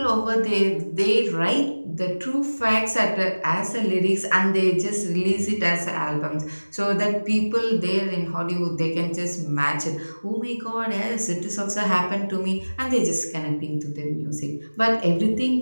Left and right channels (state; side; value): inverted; both; correlation -1.00